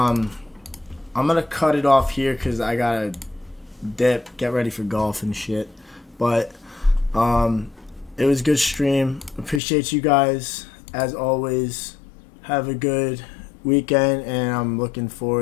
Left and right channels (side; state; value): right; drops out; at 9.6 s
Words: gonna cut it off here because I gotta dip, get ready for golf and shit. But it was a good stream. Appreciate you guys as always. Have a good weekend, and I'm looking